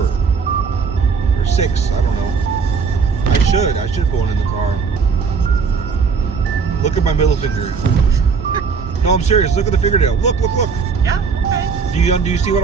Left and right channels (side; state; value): left; quieter; 5.5 dB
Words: 6. I don't know. I should put one in the car. Look at my middle finger. No, I'm serious. Look at the fingernail. Look. Yeah, okay. Do you see